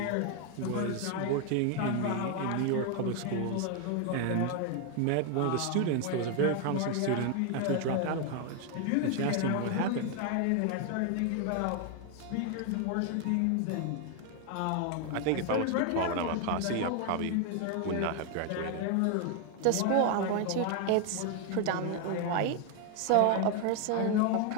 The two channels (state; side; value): different; both; correlation 0.01